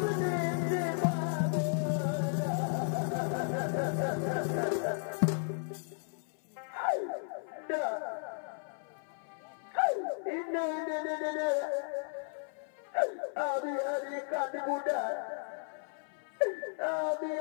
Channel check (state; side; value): silent; right; 55 dB below the other